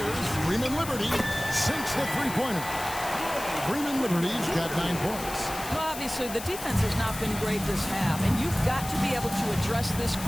Freeman Liberty. Sinks the 3-pointer. Freeman Liberty's got 9 points. Well, obviously, the defense has not been great this half, and you've got to be able to address this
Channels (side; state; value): left; noise; hiss, 10 dB below the sound